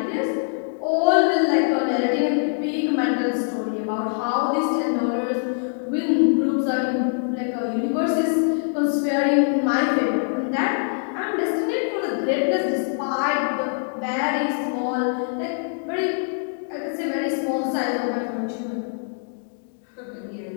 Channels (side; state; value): right; silent; digital silence